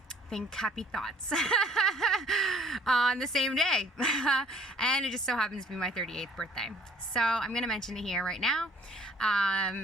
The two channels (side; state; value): both; normal; correlation 0.56